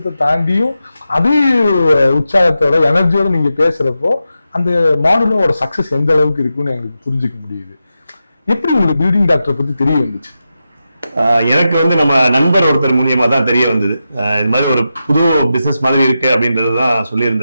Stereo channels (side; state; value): both; inverted; correlation -0.90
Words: தாண்டியும் அதே உற்சாகத்தோட எனர்ஜியோட நீங்க பேசுறப்போ அந்த மாடலோட சக்சஸ் எந்த அளவுக்கு இருக்குன்னு எங்களுக்கு புரிஞ்சுக்க முடியுது. எப்படி உங்களுக்கு பில்டிங் டாக்டர் பத்தி தெரிய வந்துச்சு? எனக்கு வந்து நம்ம நண்பர் ஒருத்தர் மூலியமா தான் தெரிய வந்தது. இது மாதிரி ஒரு புது பிசினஸ் மாதிரி இருக்கு அப்படின்றது தான்